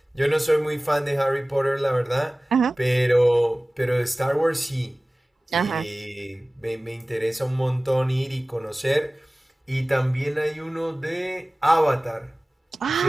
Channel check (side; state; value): both; normal; correlation 0.98